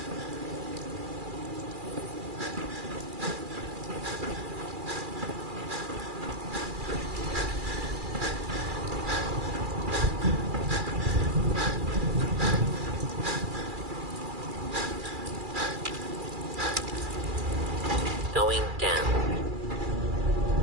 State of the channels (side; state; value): left; late; 2.4 ms